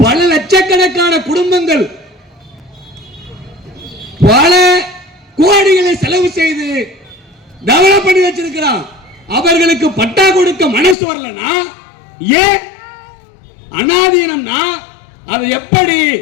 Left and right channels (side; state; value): right; drops out; at 11.0 s